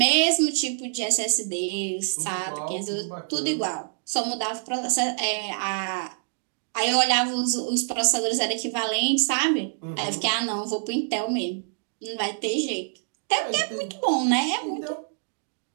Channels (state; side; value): silent; left; digital silence